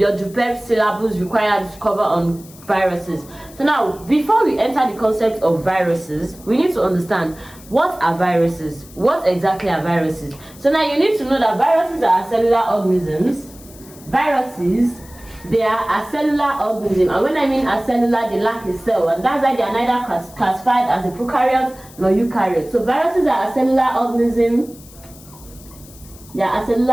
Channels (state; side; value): noise; left; hiss, 22 dB below the sound